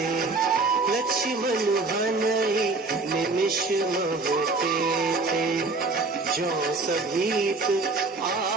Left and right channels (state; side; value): quieter; left; 3.6 dB